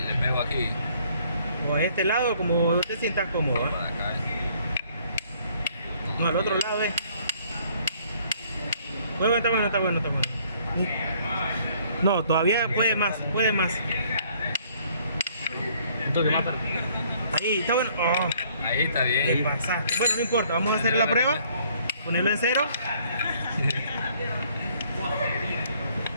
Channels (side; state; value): both; inverted; correlation -0.62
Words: pego aquí. O a este lado, como te sientas cómodo, ¿va? Por acá. No, al otro lado es. Bueno, está bueno. No, todavía puede más. Un toque más para. Ahí, está bueno. Oh, Ahí está te bien. pasaste. Bueno, no importa, vamos a hacer la prueba. Ponerlo en cero.